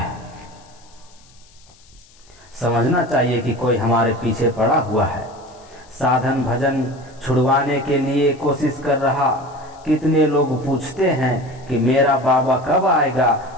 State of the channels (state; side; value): noise; left; hiss, 28 dB below the sound